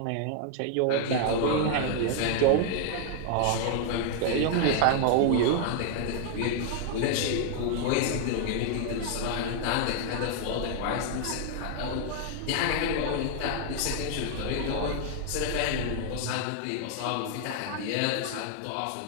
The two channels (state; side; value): different; both; correlation 0.00